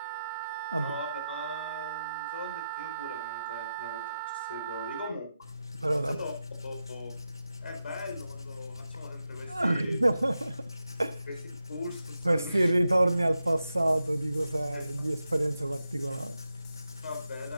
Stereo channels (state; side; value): inverted; both; correlation -0.89